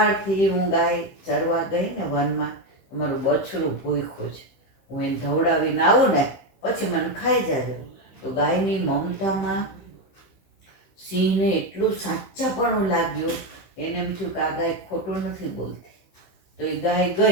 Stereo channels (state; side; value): late; right; 15 ms